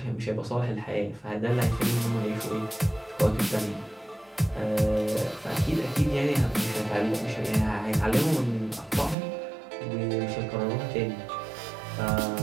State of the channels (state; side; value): drops out; left; at 9.2 s